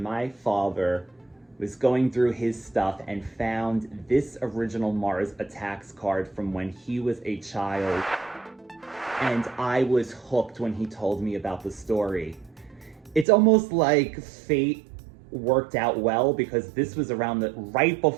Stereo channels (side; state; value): left; drops out; at 13.2 s